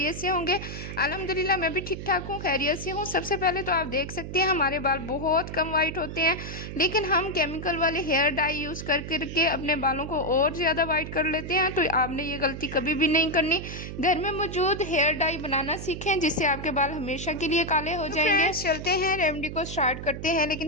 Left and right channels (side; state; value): right; noise; hum, 8 dB below the sound